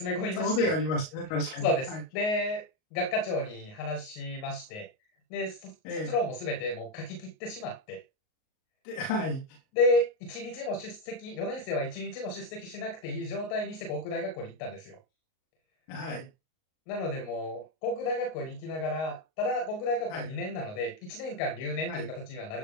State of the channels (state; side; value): late; right; 38 ms